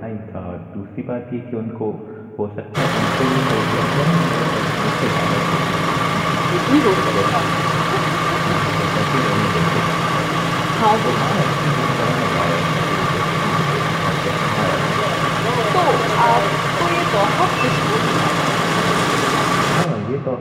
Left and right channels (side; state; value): both; identical; correlation 1.00